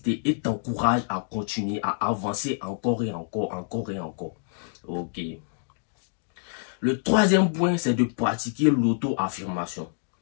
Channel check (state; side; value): silent; right; digital silence